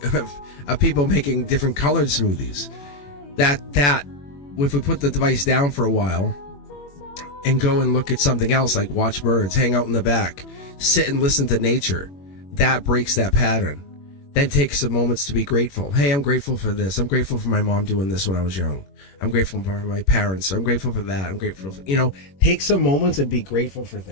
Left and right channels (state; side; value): late; right; 21 ms